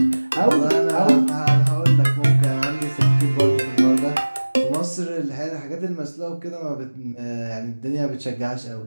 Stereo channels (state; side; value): inverted; both; correlation -1.00